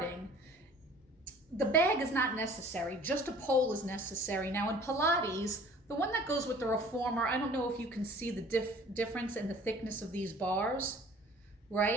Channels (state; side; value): normal; both; correlation 0.49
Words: the bag is not necessary, just a pole is necessary. Now in Pilates, the one that goes with the reformer, I don't know if you can see the difference in the thickness of these bars,